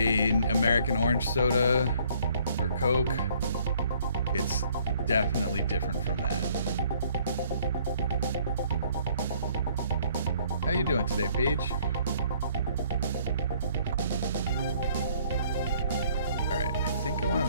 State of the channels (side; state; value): both; inverted; correlation -0.60